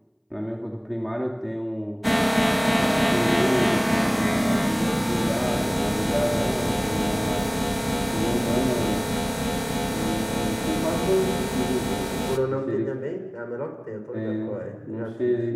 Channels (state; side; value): identical; both; correlation 1.00